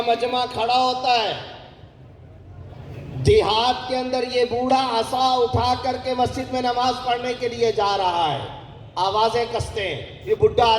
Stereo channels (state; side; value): identical; both; correlation 1.00